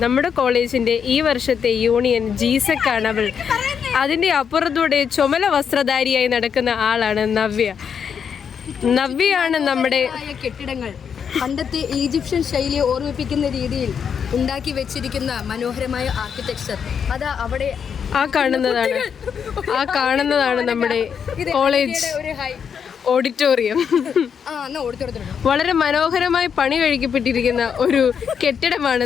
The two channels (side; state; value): right; quieter; 7.2 dB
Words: നമ്മുടെ കോളേജിൻ്റെ ഈ വർഷത്തെ യൂണിയൻ ജീസക് ആണ് അവൾ. അതിൻ്റെ അപ്പുറത്തൂടെ ചുമല വസ്ത്രധാരിയായി നടക്കുന്ന ആളാണ് നവ്യ. നവ്യയാണ് നമ്മുടെ കെട്ടിടങ്ങൾ പണ്ടത്തെ ഈജിപ്ഷ്യൻ ശൈലിയെ ഓർമ്മിപ്പിക്കുന്ന രീതിയിൽ ഉണ്ടാക്കി വെച്ചിരിക്കുന്ന മനോഹരമായ ആർക്കിടെക്ചർ. അതാ അവിടെ ആ കാണുന്നതാണ് നമ്മുടെ കോളേജ് ഓഡിറ്റോറിയം. വളരെ മനോഹരമായി പണി കഴിക്കപ്പെട്ടിരിക്കുന്ന ഒരു കെട്ടിടമാണ്